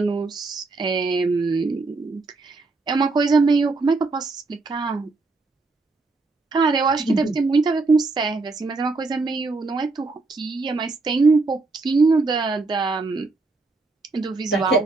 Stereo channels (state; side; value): quieter; left; 3.6 dB